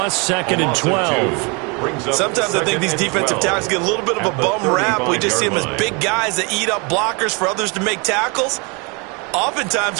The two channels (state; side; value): quieter; left; 31.0 dB